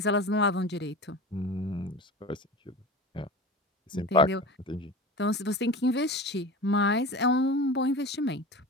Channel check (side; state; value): both; normal; correlation 0.32